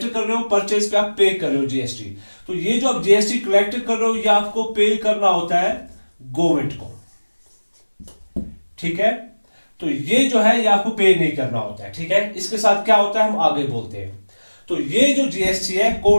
कर रहे हो, परचेज पे आप पे कर रहे हो जीएसटी। तो ये जो आप जीएसटी कलेक्ट कर रहे हो ये आपको पे करना होता है गवर्नमेंट को, ठीक है। तो ये जो है ये आपको पे नहीं करना होता है, ठीक है। इसके साथ क्या होता है हम आगे बोलते हैं। तो ये जो जीएसटी है,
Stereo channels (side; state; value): both; inverted; correlation -1.00